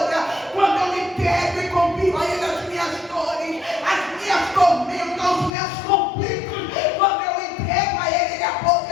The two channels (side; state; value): right; drops out; at 5.5 s